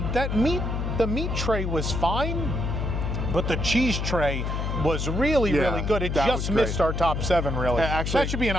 that meat. The meat tray was fine, but the cheese tray was really good. It just missed our top 7, really. Actually, that should be an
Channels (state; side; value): noise; left; hum, 1 dB below the sound